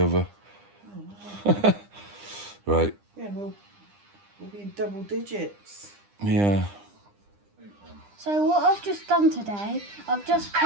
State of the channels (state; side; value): late; left; 9.9 ms